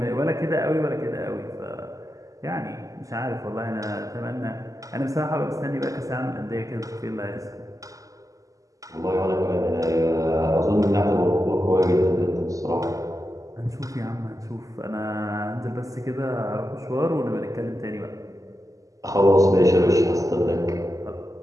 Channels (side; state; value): left; late; 0.16 ms